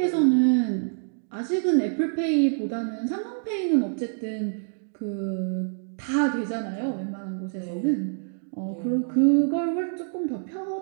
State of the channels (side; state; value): left; silent; digital silence